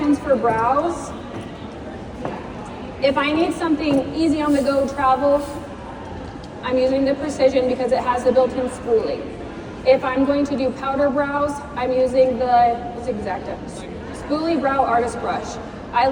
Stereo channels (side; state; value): both; identical; correlation 1.00